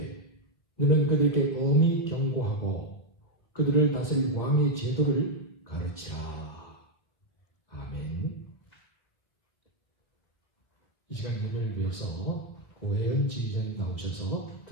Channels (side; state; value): right; late; 1.4 ms